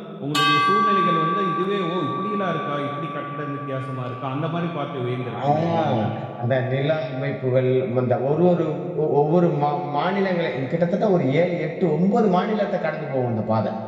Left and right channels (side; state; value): both; identical; correlation 1.00